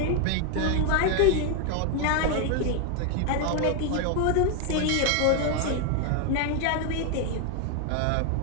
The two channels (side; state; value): both; different; correlation 0.01